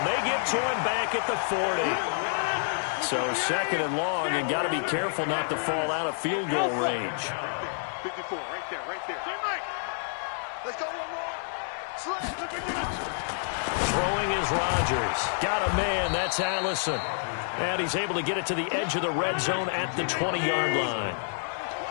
They get to him back at the 40. So 2nd and long, and got to be careful not to fall out of field goal range. 54, right there. Let's go one more. Throwing is Rodgers. Got a man. That's Allison. And he's able to get it to the edge of the red zone at the 20-yard line.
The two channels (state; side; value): silent; right; 59 dB below the other